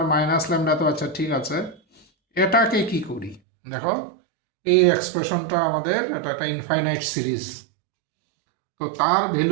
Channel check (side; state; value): left; drops out; at 3.4 s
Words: minus lambda তো আচ্ছা ঠিক আছে, এটাকে কি করি দেখো, এই এক্সপ্রেশনটা আমাদের, এটা একটা ইনফাইনাইট সিরিজ। তো তার